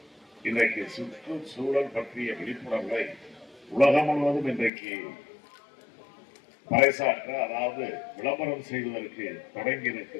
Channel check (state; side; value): drops out; right; at 4.7 s